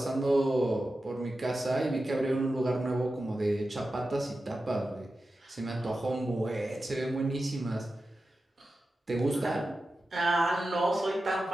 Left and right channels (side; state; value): both; normal; correlation 0.92